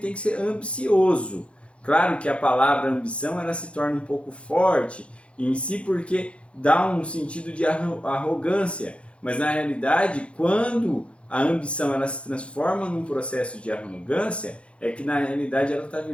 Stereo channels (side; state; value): right; late; 0.060 ms